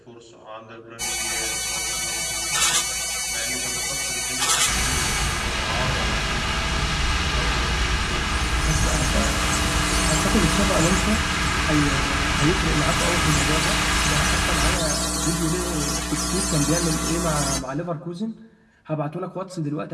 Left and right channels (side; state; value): both; identical; correlation 1.00